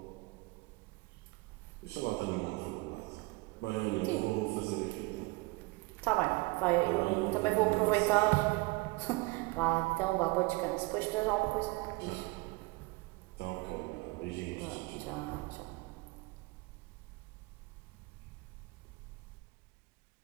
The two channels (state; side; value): quieter; left; 24.2 dB